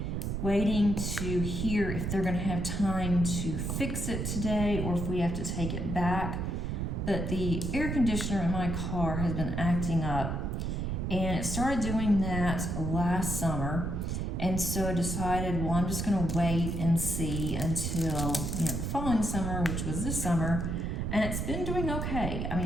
waiting to hear if they're going to have time to fix it today or if we have to take it back. But the air conditioner in my car has been acting up, and it started doing that last summer. And so I decided, well, I'm just going to wait and see until the following summer, which was this summer. And it's been doing okay. I mean,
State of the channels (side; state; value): right; noise; rumble, 2 dB below the sound